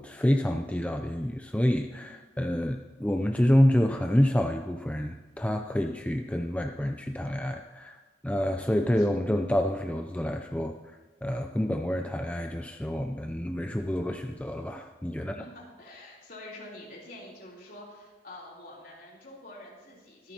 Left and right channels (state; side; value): normal; both; correlation 0.95